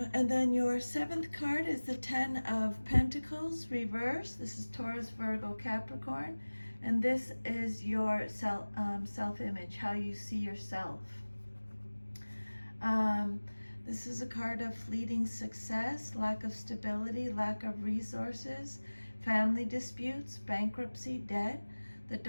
then your 7th card is the 10 of Pentacles reverse. This is Taurus, Virgo, Capricorn. And this is your self-image, how you see yourself. This is a card of fleeting success, lack of stability, lack of resources, family disputes, bankruptcy, debt, the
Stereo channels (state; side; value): inverted; both; correlation -1.00